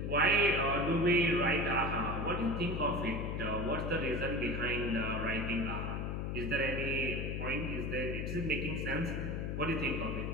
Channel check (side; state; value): left; noise; hum, 2 dB below the sound